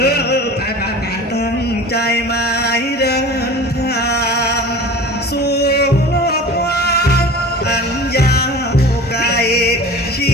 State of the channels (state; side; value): normal; both; correlation 0.38